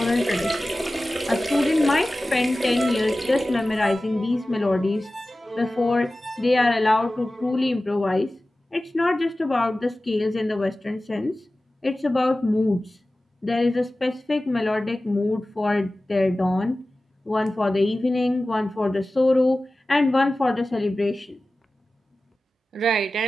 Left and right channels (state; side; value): normal; both; correlation 0.96